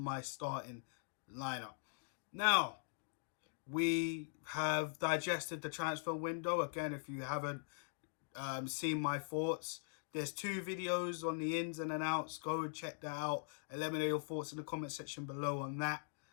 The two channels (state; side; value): silent; right; digital silence